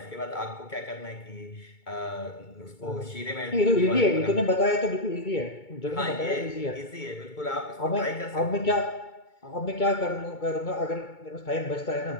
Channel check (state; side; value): late; right; 2.2 ms